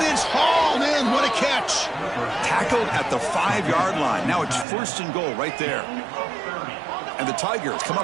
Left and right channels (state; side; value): drops out; left; at 4.7 s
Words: it's hauled in. What a catch. Tackled at the 5-yard line. Now it's first and goal right there. And the Tigers come